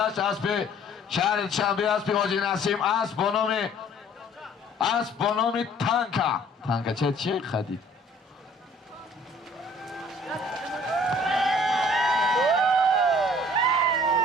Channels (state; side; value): normal; both; correlation 0.55